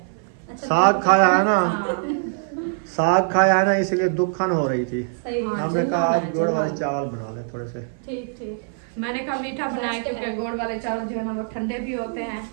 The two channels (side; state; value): left; silent; 55 dB below the other